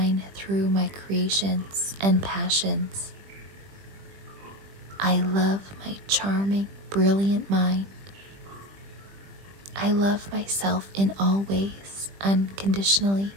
through my creations and passions. I love my charming, brilliant mind. I love myself in all ways, unconditionally.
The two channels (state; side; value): late; left; 20 ms